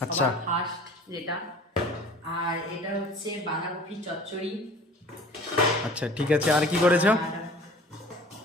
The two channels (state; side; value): normal; both; correlation 0.46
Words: আচ্ছা। সবার ফার্স্ট যেটা। আর এটা হচ্ছে বাঁধাকপি চচ্চড়ি। আচ্ছা ঠিক আছে, আর কি করেছো? আর